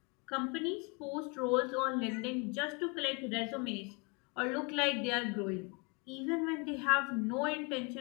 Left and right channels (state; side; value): quieter; right; 31.1 dB